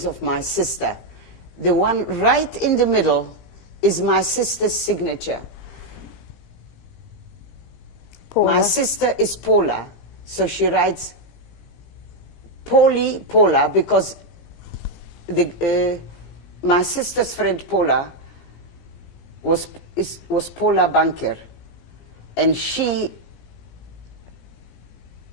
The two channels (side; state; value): right; late; 17 ms